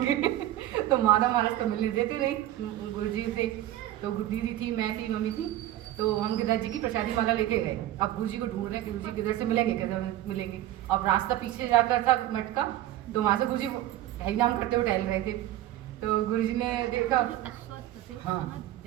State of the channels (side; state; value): left; quieter; 13.8 dB